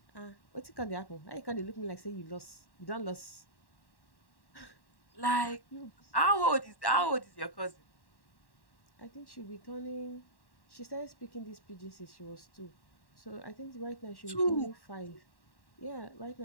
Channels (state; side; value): late; right; 1.1 ms